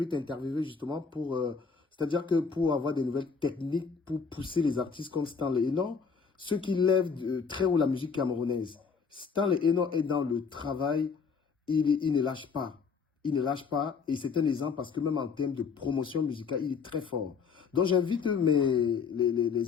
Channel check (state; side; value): quieter; right; 5.6 dB